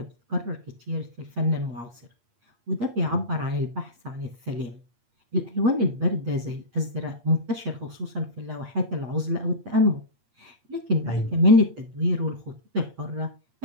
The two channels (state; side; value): late; left; 8.5 ms